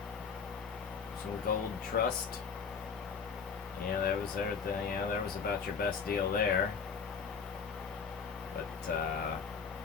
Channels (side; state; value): right; quieter; 5.8 dB